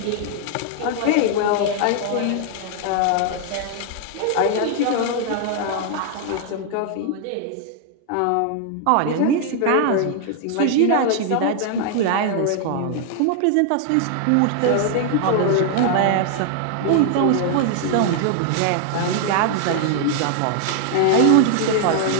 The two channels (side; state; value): both; different; correlation 0.00